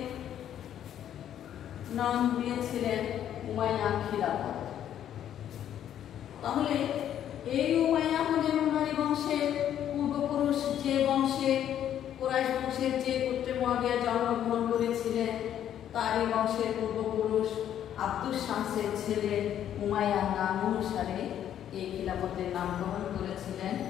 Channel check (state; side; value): quieter; right; 10.4 dB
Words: নাম দিয়েছিলেন উমাইয়া খিলাফত। তাহলে এই উমাইয়া হলেন উমাইয়া বংশের পূর্বপুরুষ, যে বংশে কুরাইশ বংশের যে গোত্রে মুয়াবিয়া জন্মগ্রহণ করেছিলেন তারই বংশের পূর্বপুরুষ আব্দুস শামসের ছেলে উমাইয়ার নাম অনুসারে এই খিলাফতের নামকরণ করেছিলেন।